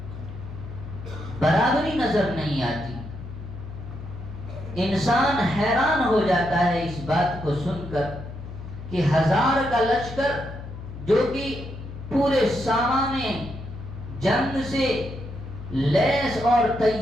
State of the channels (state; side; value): noise; left; hum, 11 dB below the sound